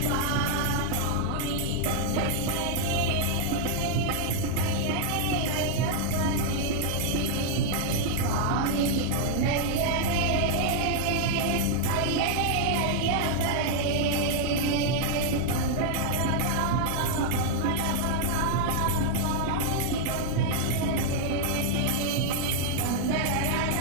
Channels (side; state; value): both; different; correlation 0.00